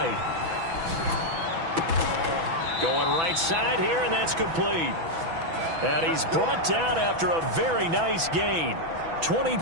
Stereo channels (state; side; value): late; left; 6.0 ms